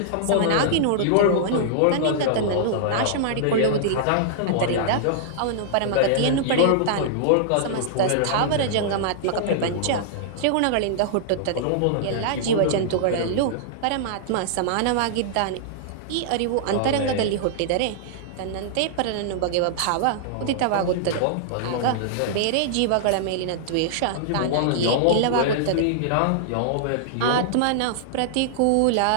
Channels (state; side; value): different; both; correlation -0.01